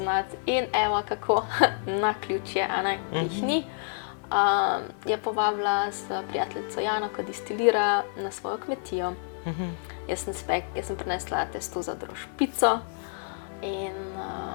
In evo kako naključje, a ne, jih ni. Je povabila s prijateljico Jano, ki distilira, na svojo kmetijo. Jaz sem prinesla testo za drožpico in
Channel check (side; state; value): right; silent; 58 dB below the other